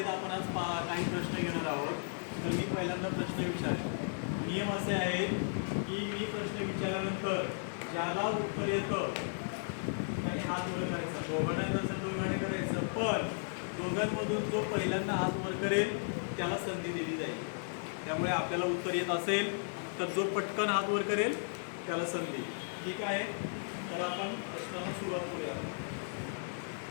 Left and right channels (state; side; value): silent; right; digital silence